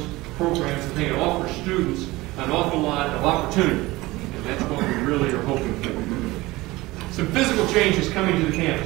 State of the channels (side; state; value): left; quieter; 20.0 dB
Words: programs. I think it offers students an awful lot of opportunity, and that's what we really are hoping for. Some physical changes coming to the